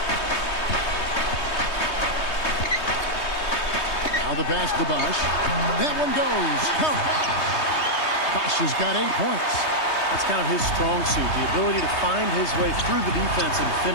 Now the pass to Bosch. That one goes. Count. Bosch has got 8 points. That's kind of his strong suit, the ability to find his way through the defense and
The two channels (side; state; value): right; late; 3.2 ms